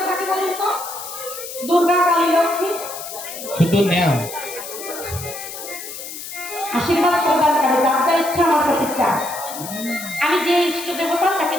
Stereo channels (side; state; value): left; noise; hiss, 10 dB below the sound